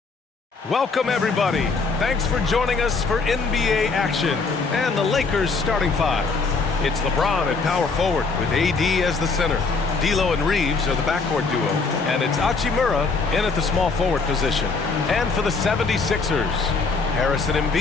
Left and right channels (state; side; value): quieter; right; 4.3 dB